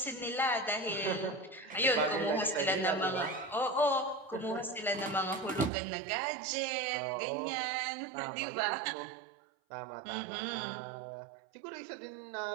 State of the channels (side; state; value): left; drops out; at 5.7 s